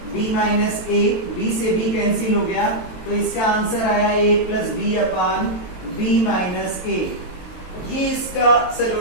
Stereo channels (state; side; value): late; right; 22 ms